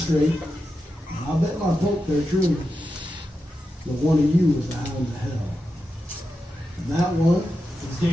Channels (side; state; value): both; normal; correlation 0.89